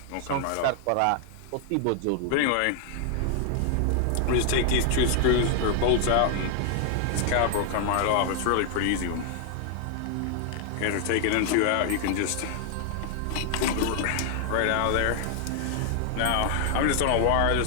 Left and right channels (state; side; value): different; both; correlation 0.00